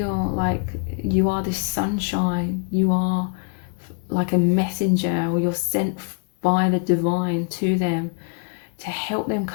like you are this sunshine. You are like a messenger, or you're sent by the divine to them to help them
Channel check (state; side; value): quieter; right; 38.9 dB